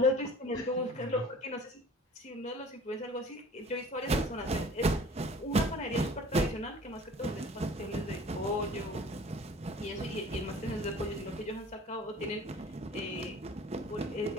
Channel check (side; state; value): both; normal; correlation 0.46